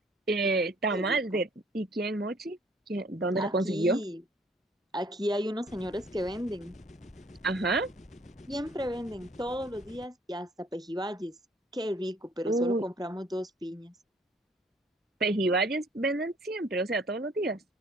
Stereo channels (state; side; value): normal; both; correlation 0.59